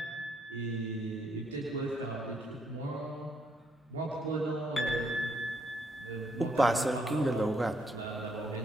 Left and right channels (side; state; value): both; normal; correlation 0.73